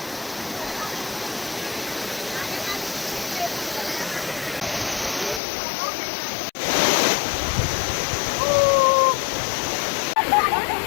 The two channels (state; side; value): drops out; right; at 5.4 s